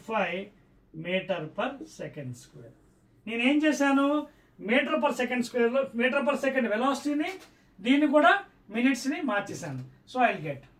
మీటర్ పర్ సెకండ్ స్క్వేర్. నేనేం చేశాను, మీటర్ పర్ సెకండ్ స్క్వేర్లో మీటర్ పర్ సెకండ్ వెలాసిటీని దీన్ని కూడా మినిట్స్ని మార్చేశాను. So I get.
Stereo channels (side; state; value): both; identical; correlation 1.00